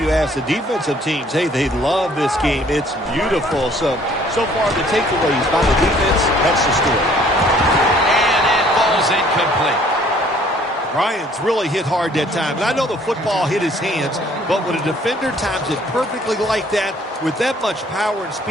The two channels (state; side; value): normal; both; correlation 0.58